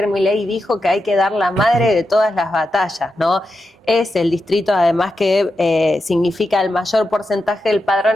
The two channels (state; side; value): normal; both; correlation 0.88